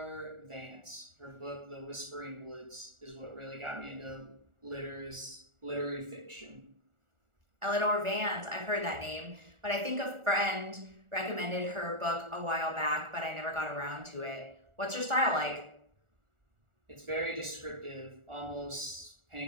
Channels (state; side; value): late; left; 1.4 ms